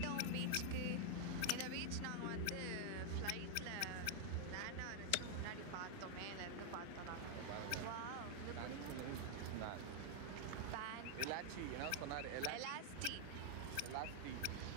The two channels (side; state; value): both; different; correlation 0.00